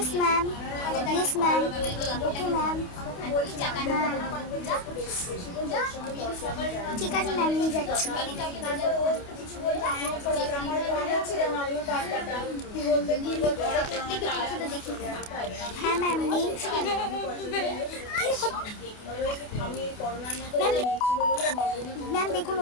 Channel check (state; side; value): late; right; 28 ms